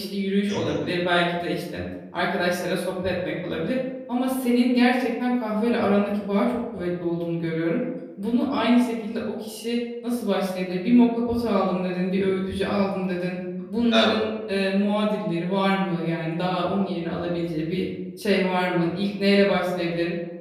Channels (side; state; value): both; identical; correlation 1.00